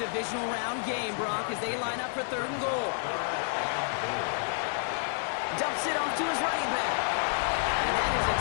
round game, Brock, as they line up for 3rd and goal. Dumps it off to his running back. And that is a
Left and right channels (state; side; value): silent; right; digital silence